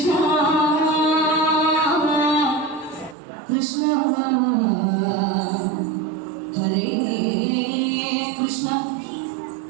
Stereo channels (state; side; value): drops out; left; at 3.2 s